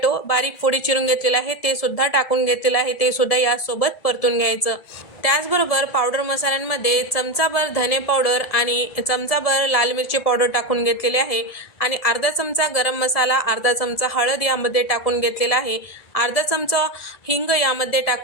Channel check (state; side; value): late; right; 1.7 ms